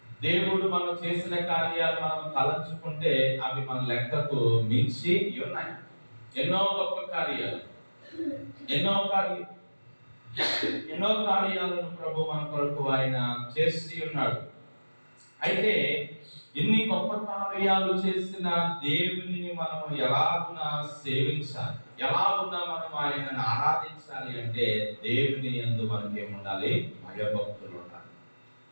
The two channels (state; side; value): inverted; both; correlation -1.00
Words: దేవుడు మనం చేసిన కార్యాలు మనం తలంచుకుంటే అవి మన లెక్కకు మించి ఉన్నాయి. ఎన్నో గొప్ప కార్యాలు, ఎన్నో కార్యాలను ప్రభు మన కొరకు ఆయన చేసి ఉన్నాడు. అయితే ఇన్ని గొప్ప కార్యాలు చేసిన దేవుని మనం ఎలాగున్నా సేవించాలి, ఎలాగున్నా మనం ఆయనను ఆరాధించాలి అంటే దేవుని యందు మనకి ఏముండాలి? భయభక్తులు ఉండాలి.